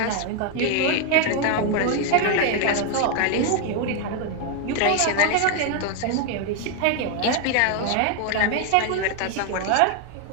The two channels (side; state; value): both; different; correlation 0.01